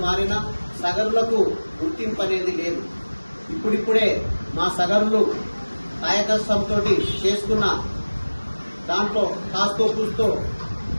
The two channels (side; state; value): both; inverted; correlation -1.00